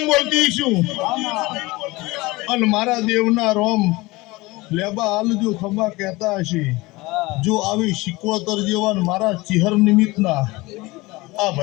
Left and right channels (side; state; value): right; quieter; 21.8 dB